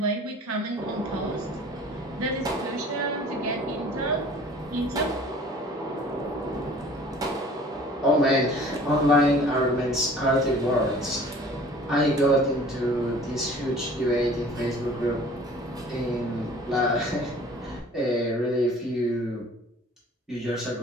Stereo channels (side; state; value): both; normal; correlation 0.48